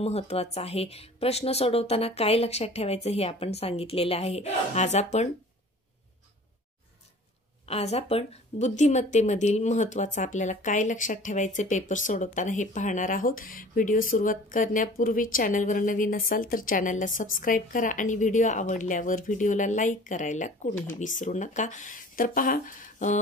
आहे, प्रश्न सोडवताना काय लक्षात ठेवायचं हे आपण सांगितलेलं आहे। आज आपण बुद्धिमत्तेमधील महत्त्वाचं आपल्याला काय लक्षात ठेवायचे पेपर सोडवताना हे पाहणार आहोत। व्हिडिओ सुरुवात करण्यापूर्वी चॅनलवर नवीन असाल तर चॅनलला सबस्क्राइब करा आणि व्हिडिओ आवडल्यावर व्हिडिओला लाईक करायला कोणीही विसरू नका। तर पहा,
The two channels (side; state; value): both; normal; correlation 0.46